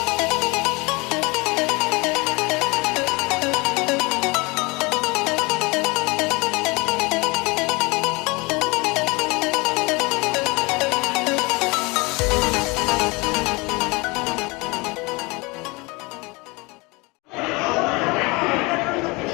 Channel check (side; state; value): right; quieter; 26.0 dB